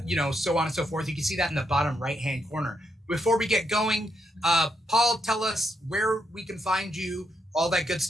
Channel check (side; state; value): both; normal; correlation 0.79